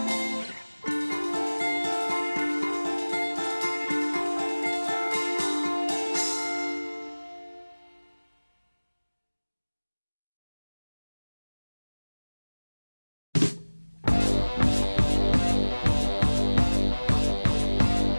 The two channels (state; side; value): inverted; both; correlation -1.00